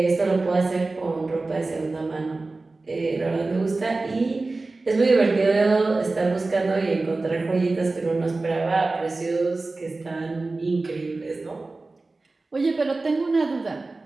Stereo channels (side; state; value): left; quieter; 3.4 dB